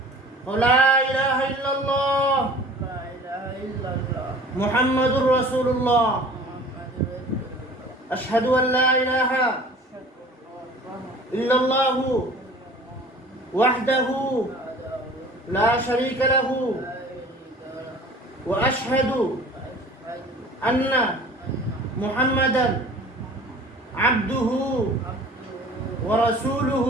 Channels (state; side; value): normal; both; correlation 0.46